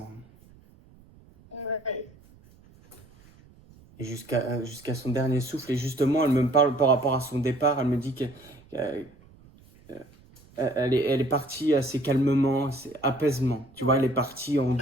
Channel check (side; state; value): right; noise; rumble, 26 dB below the sound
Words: Ouais. Et jusqu'à son dernier souffle. Et justement, elle me parle par rapport à son départ. Elle me dit qu'elle elle est partie assez calmement, assez apaisement. Tu vois, elle est partie en Très